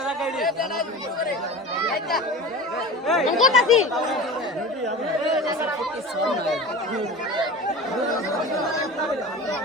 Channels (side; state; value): both; normal; correlation 0.33